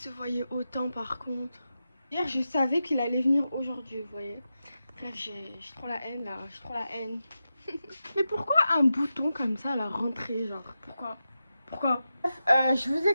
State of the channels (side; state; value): both; inverted; correlation -0.90